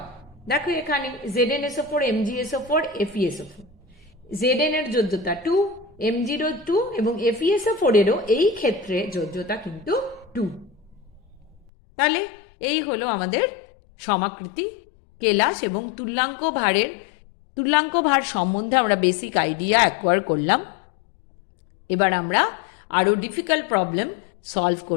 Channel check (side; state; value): right; drops out; at 11.6 s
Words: দেখো এখানে ZnSO4, MgSO4, FeSO4, Zn এর যোজ্যতা 2, Mg 2 এবং FeSO4 এরও এই ক্ষেত্রে যোজ্যতা কিন্তু 2। তাহলে এই হলো আমাদের সমাকৃতি, কেলাস এবং তুল্যাঙ্ক ভার সম্বন্ধে আমরা বেসিক আইডিয়া অ্যাকোয়ার করলাম। এবার আমরা আরও ডিফিকাল্ট প্রবলেম সলভ